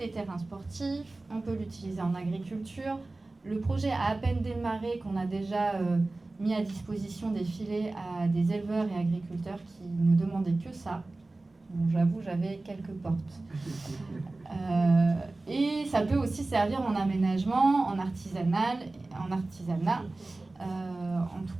terrains sportifs, on peut l'utiliser en agriculture. Le projet a à peine démarré qu'on a déjà mis à disposition des filets à des éleveurs et agriculteurs qui ne demandaient que ça. Bon, j'avoue, j'avais quelques portes. Et ça peut aussi servir en aménagement, en artisanat. En tout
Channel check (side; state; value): left; quieter; 3.1 dB